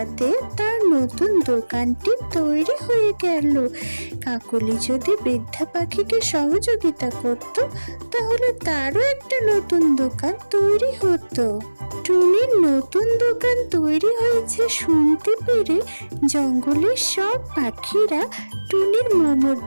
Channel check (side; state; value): both; inverted; correlation -1.00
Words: তার নতুন দোকানটি তৈরি হয়ে গেল। কাকলি যদি বৃদ্ধা পাখিকে সহযোগিতা করত, তাহলে তারও একটা নতুন দোকান তৈরি হতো। টুনির নতুন দোকান তৈরি হয়েছে শুনতে পেরে জঙ্গলের সব পাখিরা টুনির মোমোর